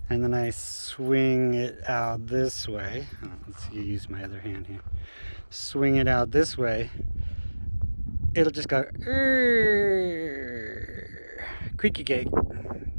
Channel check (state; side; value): inverted; both; correlation -1.00